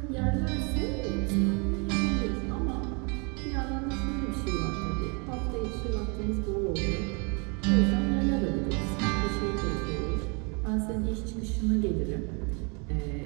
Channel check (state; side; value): quieter; left; 33.8 dB